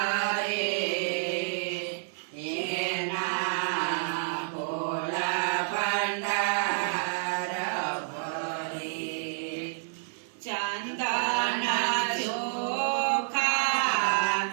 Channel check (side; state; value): left; silent; digital silence